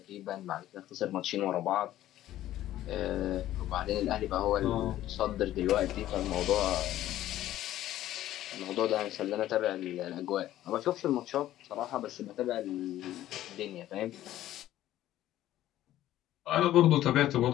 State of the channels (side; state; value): right; quieter; 13.6 dB